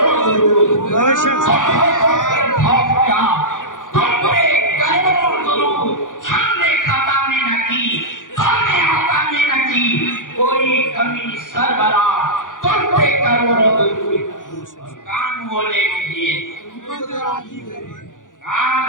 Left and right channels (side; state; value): right; late; 0.88 ms